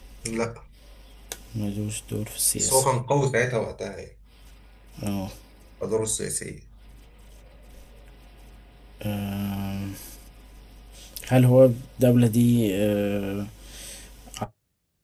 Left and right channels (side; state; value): both; identical; correlation 1.00